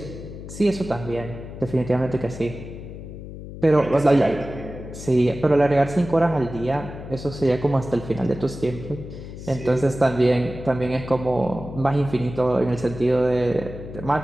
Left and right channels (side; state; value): left; noise; hum, 12 dB below the sound